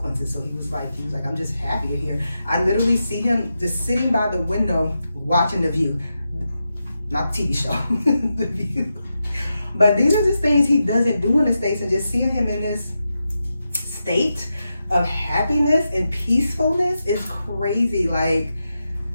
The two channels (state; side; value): inverted; both; correlation -0.88